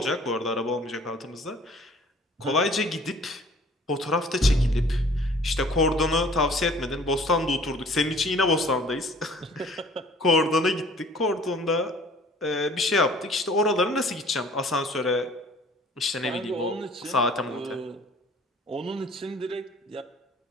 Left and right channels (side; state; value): both; normal; correlation 0.52